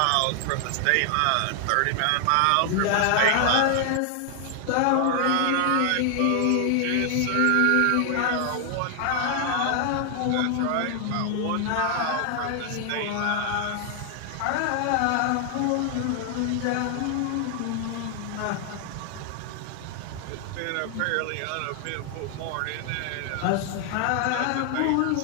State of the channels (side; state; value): both; different; correlation 0.00